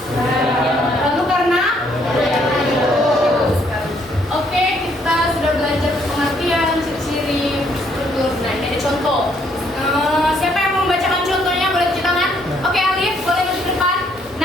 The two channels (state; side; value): normal; both; correlation 0.68